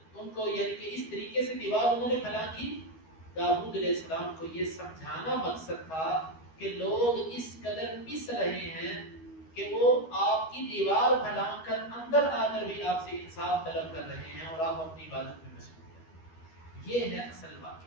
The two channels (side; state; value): right; late; 12 ms